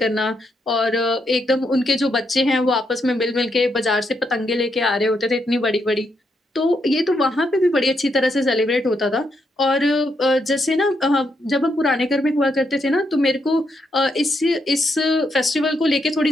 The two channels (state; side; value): normal; both; correlation 0.79